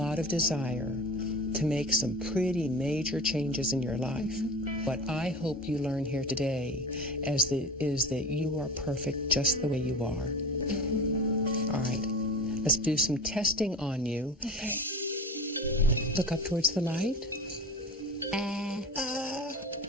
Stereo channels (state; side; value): normal; both; correlation 0.33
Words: of desire to make some pretty major changes in your life. What I hope you learn here today is that you are perfect just the way you are. All right, let's do some testing on you. Okay. Look up towards the light.